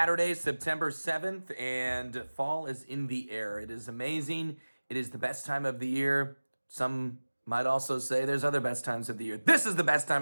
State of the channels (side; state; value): both; inverted; correlation -1.00